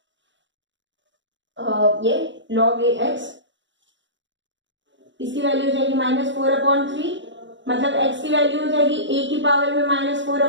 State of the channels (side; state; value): left; late; 0.54 ms